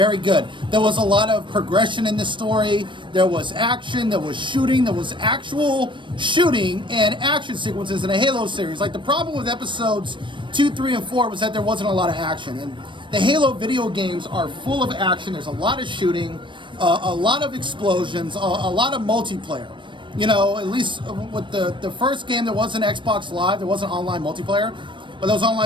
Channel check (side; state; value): left; late; 0.24 ms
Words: good. There was a lot of progression in the story. There was action, there was shooting, there was actual shooting and action sequences in a Halo series. Like, the problem with episodes 2, 3, and 4 was that there wasn't a lot of action. And the Halo video games are full of action. There's a lot of shooting, a lot of explosions, a lot of multiplayer. You know, at least with the first game, there wasn't Xbox Live, there wasn't online multiplayer, but there was